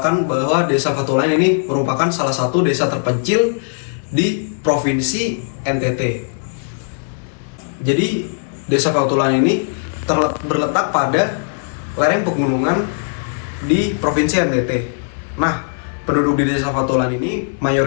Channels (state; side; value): silent; right; digital silence